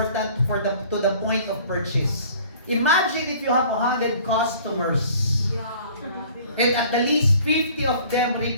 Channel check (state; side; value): inverted; both; correlation -0.51